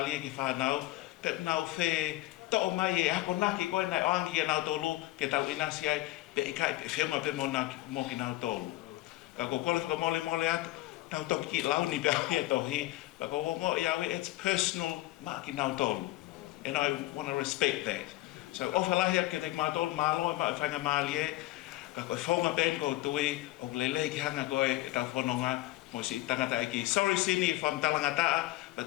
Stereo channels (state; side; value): quieter; right; 17.9 dB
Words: ki whanau, pe nau whe to'o mai e hako naki koe nai oangi e nau tolu, ke tau inasi ai, pe I kai pe whiunga pe mo ki nau tolu. Ka ko kole whaka mole atu, tau toki ki launi pe ai e tohi, pa ko wongo I awe, it's personal ma ki nau tolu. And I want to respect that. So ofalahi ke te mātolu māloa, ma whainga maalia, ka koe whonga ben ko tui, o lele ki hanga koe e tau whanonga, mo si tangata eki. Sorry Sini if I'm talanga taa, but